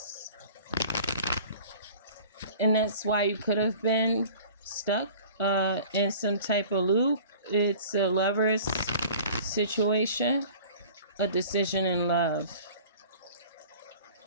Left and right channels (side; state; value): both; inverted; correlation -0.45